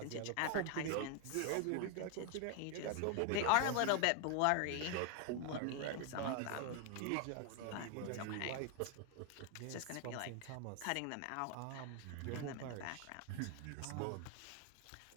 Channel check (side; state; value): both; different; correlation 0.01